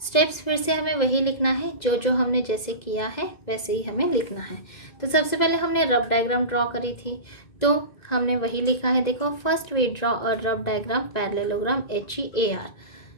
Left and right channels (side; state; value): right; late; 2.0 ms